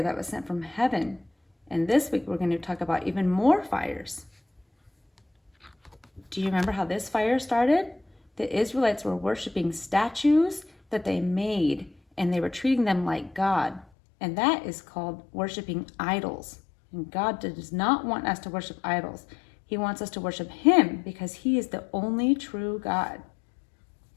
that was sent from heaven, and this week we're going to talk about even more fires. Do you remember how this fire started? The Israelites were worshiping statues that they made, and they were treating them like God, and that is called worshiping idols. And God does not want us to worship idols. He wants us to worship Him because He is the only true God.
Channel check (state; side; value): drops out; right; at 13.9 s